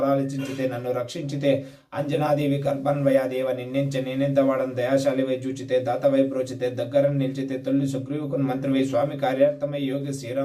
నన్ను రక్షించితే అంజనాదేవి కల్పన్వయాదేవ నిన్నెంచ నేనెంత వాడని దయాశాలివై చూచితే దాతవై బ్రోచితే దగ్గర నిలిచితే తొలి సుగ్రీవుకుని మంత్రివై స్వామి కార్యార్థమై యోగి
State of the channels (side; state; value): both; identical; correlation 1.00